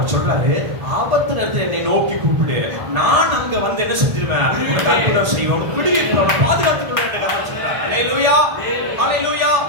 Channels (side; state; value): left; late; 1.8 ms